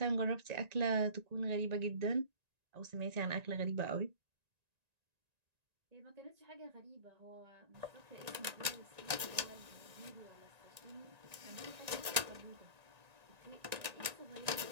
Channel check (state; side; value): late; left; 1.9 ms